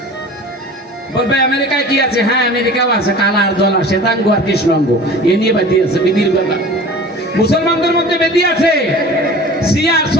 বলবে আমেরিকায় কি আছে? হ্যাঁ আমেরিকাও আছে, কালা আর দল, শ্বেতাঙ্গ আর কৃষ্ণাঙ্গ, এ নিয়ে বেদি আছে, বেদির ব্যাপার। মুসলমানদের মধ্যে বেদি আছে, শিয়া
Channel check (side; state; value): both; normal; correlation 0.40